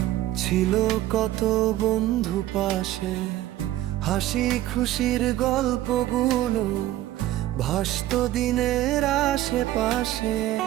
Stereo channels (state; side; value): quieter; left; 14.7 dB